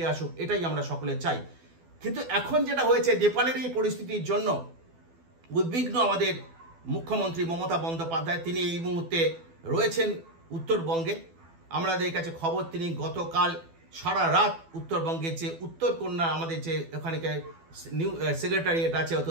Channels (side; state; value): left; late; 12 ms